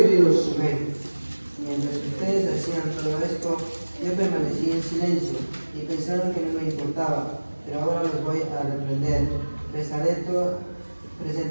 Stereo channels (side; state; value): both; inverted; correlation -1.00